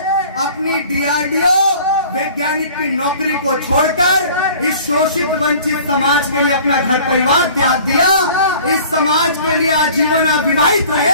अपनी DRDO वैज्ञानिक की नौकरी को छोड़कर इस शोषित वंचित समाज के लिए अपना घर परिवार त्याग दिया। इस समाज के लिए आजीवन अविवाहित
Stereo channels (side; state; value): both; inverted; correlation -0.48